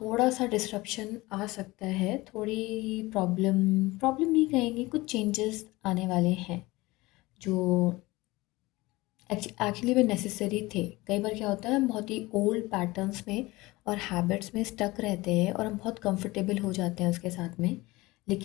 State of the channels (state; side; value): quieter; right; 20.9 dB